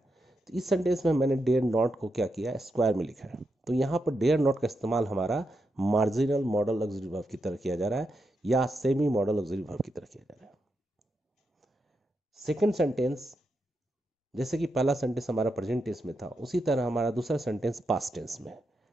तो इस सेंटेंस में मैंने डेयर नॉट को क्या किया है, स्क्वायर में लिखा है। तो यहाँ पर डेयर नॉट का इस्तेमाल हमारा मार्जिनल मॉडल ऑक्सिलरी वर्ब की तरह किया जा रहा है, या सेमी मॉडल ऑक्सिलरी वर्ब की तरह किया जा रहा है। सेकेंड सेंटेंस, जैसे कि पहला सेंटेंस हमारा प्रेजेंट टेंस में था, उसी तरह हमारा दूसरा सेंटेंस पास्ट टेंस में।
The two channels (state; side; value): normal; both; correlation 0.85